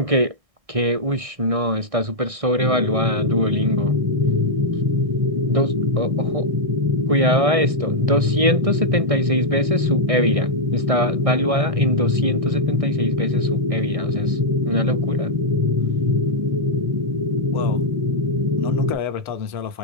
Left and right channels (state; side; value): late; left; 1.6 ms